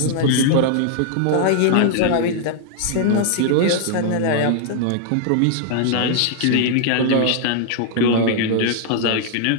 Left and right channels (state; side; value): different; both; correlation -0.01